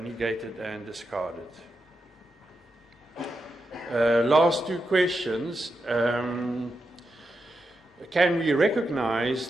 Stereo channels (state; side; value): normal; both; correlation 0.87